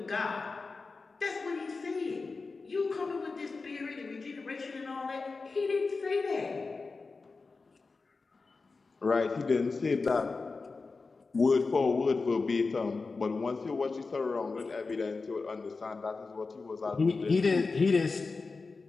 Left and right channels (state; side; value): quieter; right; 4.1 dB